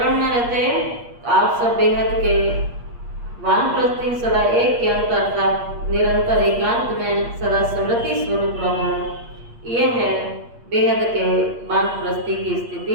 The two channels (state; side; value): late; left; 8.5 ms